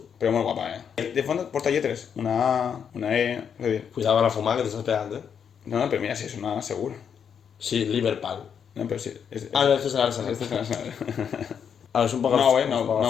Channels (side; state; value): right; quieter; 7.5 dB